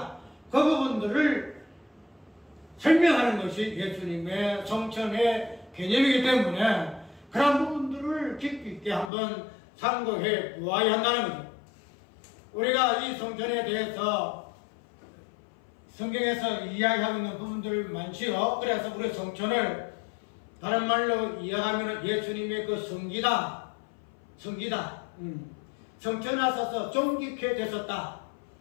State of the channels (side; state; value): right; drops out; at 9.1 s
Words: 그 부분들을 설명하는 것이 예수님의 성천의 개념이기 때문에 그런 부분들을 깊이 있게 한번 상고해 보아야 한다는 거죠. 우리가 이 성천에 대해서 성경에서 이야기하고 있는 부분들 많지요. 그래서 우리 성천을 다른 말로 이야기하면 예수님의 그 성기다. 성천에 있어서 존귀케 되셨다.